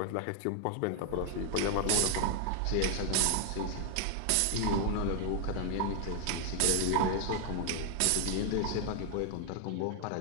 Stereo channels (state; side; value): different; both; correlation 0.00